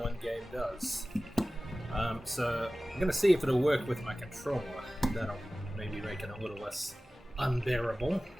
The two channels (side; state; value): both; normal; correlation 0.97